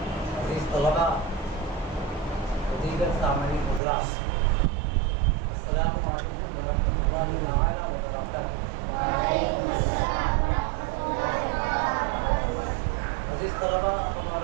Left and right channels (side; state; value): left; drops out; at 3.8 s